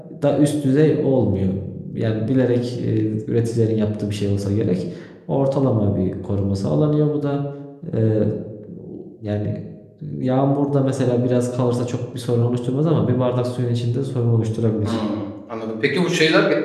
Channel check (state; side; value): identical; both; correlation 1.00